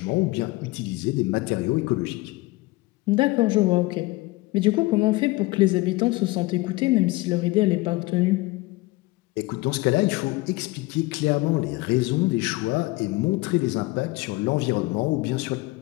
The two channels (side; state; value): right; quieter; 21.3 dB